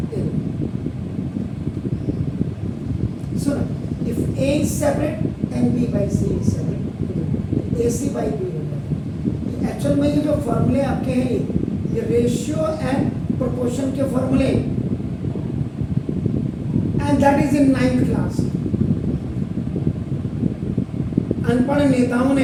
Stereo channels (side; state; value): both; identical; correlation 1.00